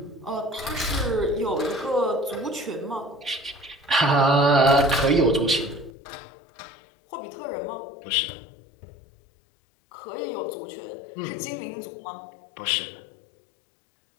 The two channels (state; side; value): drops out; right; at 5.9 s